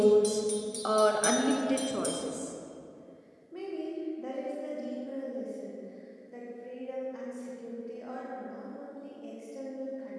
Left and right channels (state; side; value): identical; both; correlation 1.00